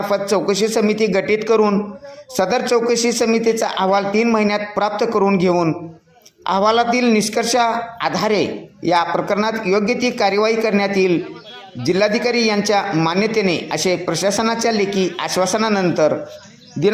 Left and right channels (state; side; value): identical; both; correlation 1.00